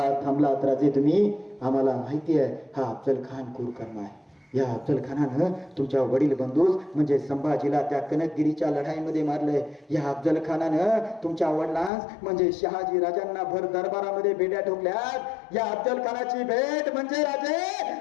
थांबलात राजे तुम्ही? आम्हाला माहिती आहे हा अफजल खान क्रूर कर्म आहे. या अफजल खानानं तुमच्या वडील बंधूस म्हणजे संभाजीला त्या कनकगिरीच्या लढाईमध्ये मारलंय. या अफजल खानानं तुमच्या वडिलांस म्हणजे शहाजी राजांना भर दरबारामध्ये बेड्या ठोकल्यात. या अफजल खानाची भेट म्हणजे राजे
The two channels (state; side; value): drops out; right; at 11.9 s